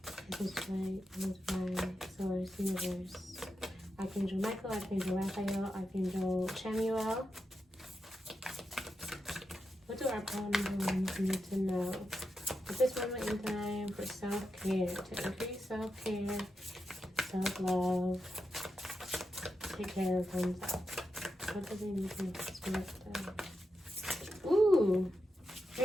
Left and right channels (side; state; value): both; normal; correlation 0.88